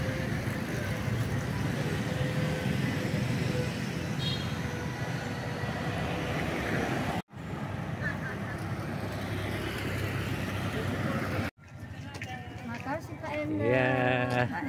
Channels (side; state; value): both; identical; correlation 1.00